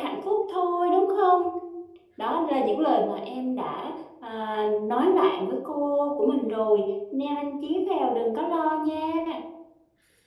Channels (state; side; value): identical; both; correlation 1.00